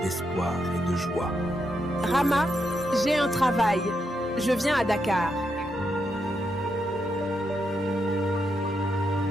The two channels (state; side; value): normal; both; correlation 0.82